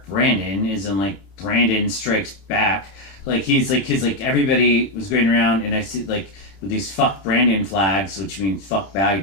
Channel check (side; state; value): right; late; 31 ms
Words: Brandon, is in like Brandon Strikes Back. Like he's like everybody was going around and I see like with these fuck Brandon flags, which means fuck